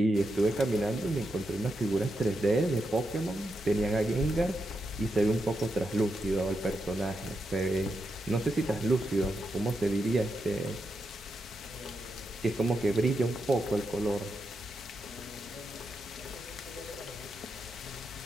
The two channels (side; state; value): both; normal; correlation 0.85